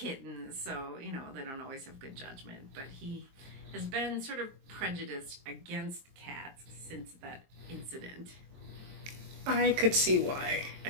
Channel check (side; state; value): left; late; 22 ms